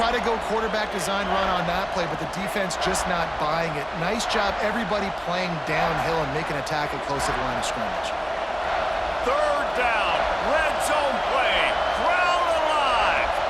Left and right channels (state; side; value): identical; both; correlation 1.00